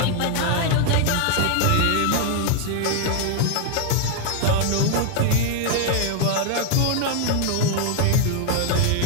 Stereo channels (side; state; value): both; different; correlation 0.00